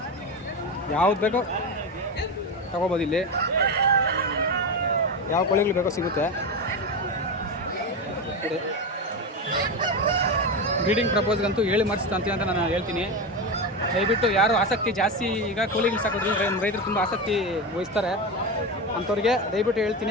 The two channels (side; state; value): both; normal; correlation 0.18